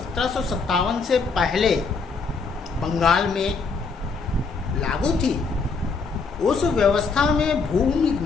से पहले बंगाल में लागू थी उस व्यवस्था में भूमि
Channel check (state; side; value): quieter; right; 4.6 dB